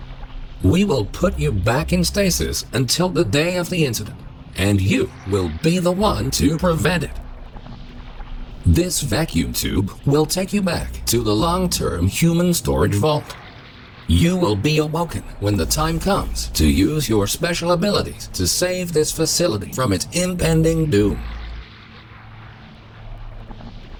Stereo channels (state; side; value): identical; both; correlation 1.00